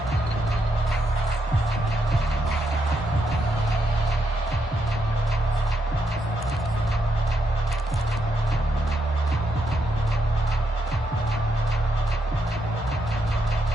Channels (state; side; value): normal; both; correlation 0.80